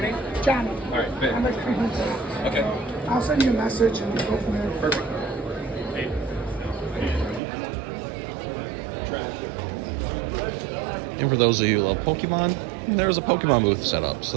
John. All right, I'm like creeping. okay. I'll send you a message and we'll go from there. Perfect. And for those of you who love Pokemon, there was a Pokemon booth set up,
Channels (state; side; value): drops out; left; at 7.4 s